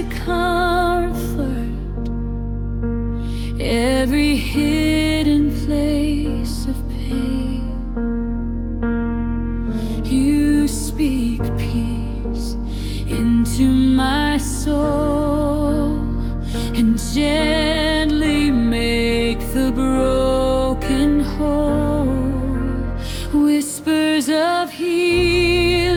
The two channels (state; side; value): identical; both; correlation 1.00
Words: comfort every hidden place of pain. You speak peace into my soul and gently make the broken whole. Whispers of